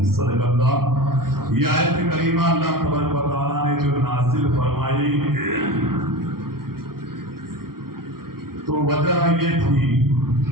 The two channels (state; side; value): late; left; 0.93 ms